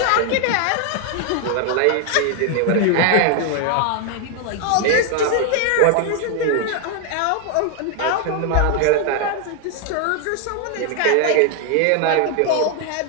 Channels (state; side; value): different; both; correlation 0.00